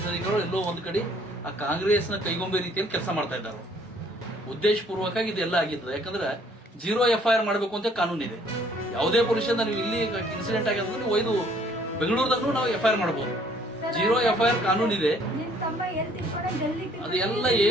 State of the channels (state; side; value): normal; both; correlation 0.61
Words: ಅಧಿಕಾರಿಗಳು ಎಲ್ಲೋ ಒಂದು ಕಡೆ ಆ ಕಾಂಗ್ರೆಸ್ನ ಕೈಗೊಂಬೆ ರೀತಿಯಲ್ಲಿ ಕೆಲಸ ಮಾಡ್ತಾ ಇದ್ದಾರೆ. ಉದ್ದೇಶಪೂರ್ವಕವಾಗಿ ಇದೆಲ್ಲ ಆಗಿರ್ತದೆ. ಯಾಕಂದ್ರೆ 0 FIR ಮಾಡಬೇಕು ಅಂತ ಕಾನೂನು ಇದೆ. ಯಾವುದೇ ಪೊಲೀಸ್ ನೀವು ಇಲ್ಲಿ ಇನ್ಸಿಡೆಂಟ್ ಆಗಿದ್ರೆ ನೀವು ಒಯ್ದು ಬೆಂಗಳೂರದಾಗೂ ನಾವು FIR ಮಾಡಬಹುದು. 0 FIR ಕಾನೂನು ಇದೆ. ಅದೆಲ್ಲ